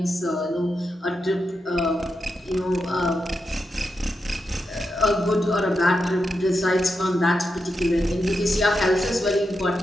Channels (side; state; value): both; normal; correlation 0.87